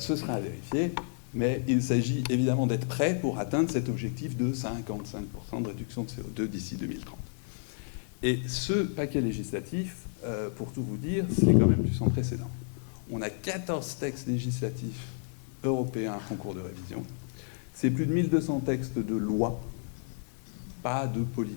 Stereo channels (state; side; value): silent; right; digital silence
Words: sera à vérifier, mais il s'agit évidemment d'être prêt pour atteindre cet objectif de 55% de réduction de CO2 d'ici 2030. Et ce paquet législatif, pour tout vous dire, c'est quand même du sans précédent. On a 14 textes législatifs européens en cours de révision. C'est plus de 1200 textes de loi, pas de